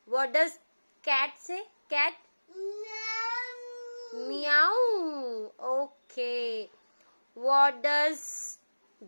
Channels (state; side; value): inverted; both; correlation -1.00